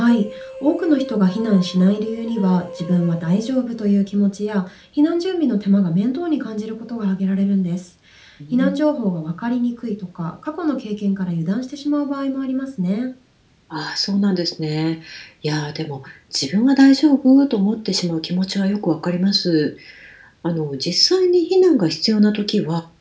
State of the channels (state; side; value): identical; both; correlation 1.00